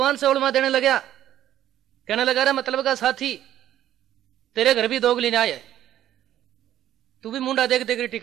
से उलमा देने लगा, कहने लगा, रे मतलब का साथी, तेरे घर भी दोगली न्याय है, तू भी मुंडा देख देख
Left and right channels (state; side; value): quieter; left; 12.1 dB